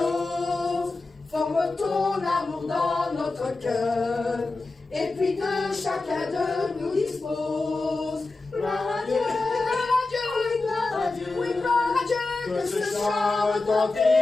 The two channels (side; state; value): right; quieter; 3.4 dB